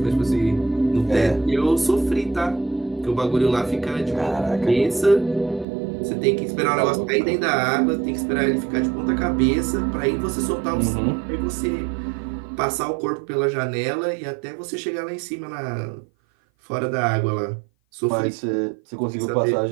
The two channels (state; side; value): drops out; left; at 5.7 s